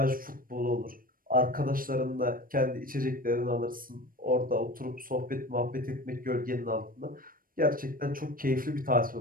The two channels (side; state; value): left; late; 0.41 ms